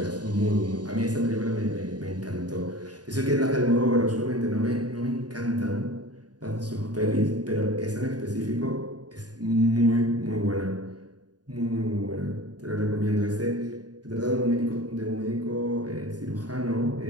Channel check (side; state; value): left; late; 0.69 ms